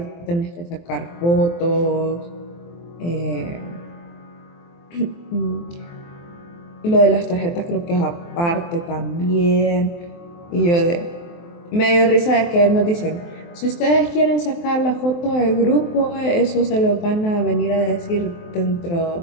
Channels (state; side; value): late; right; 23 ms